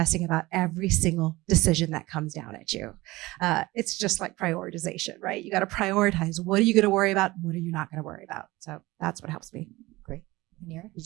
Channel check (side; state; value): left; quieter; 19.9 dB